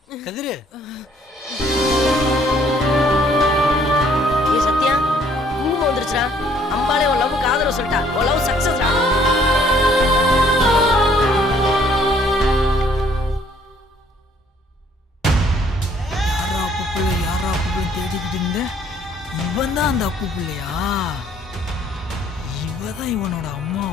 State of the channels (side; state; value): both; normal; correlation 0.62